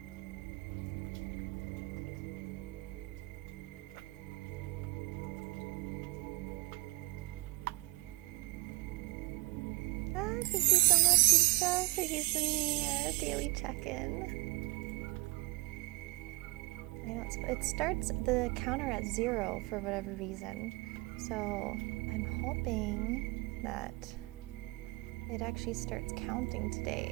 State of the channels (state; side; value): quieter; left; 21.3 dB